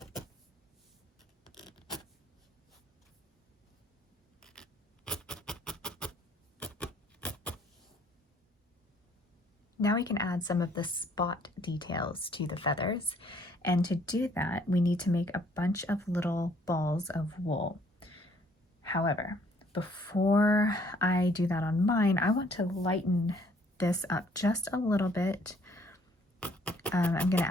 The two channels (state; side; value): normal; both; correlation 0.62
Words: Now we can add some of the spot details to the feathers. And to do that, we need to make a bunch of little balls of wool. However, before I do that on mine, I want to lighten this up just a little bit. I'm going to